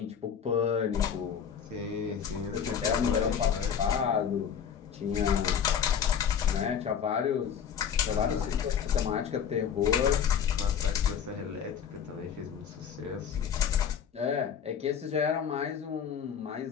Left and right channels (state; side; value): quieter; right; 7.8 dB